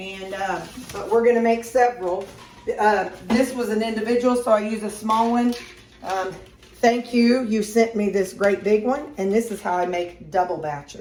but we're gonna make several. This was an individual, so I use a small one. Thank you, you sent me this great big one. And this is how I make double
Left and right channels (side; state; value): both; identical; correlation 1.00